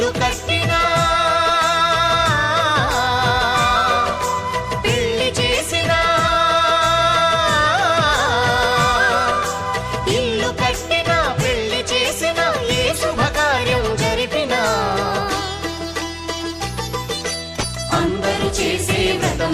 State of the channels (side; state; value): both; identical; correlation 1.00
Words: కట్టినా పెళ్లి చేసినా, ఇల్లు కట్టినా పెళ్లి చేసినా ఏ శుభకార్యం జరిపినా అందరూ చేసే వ్రతం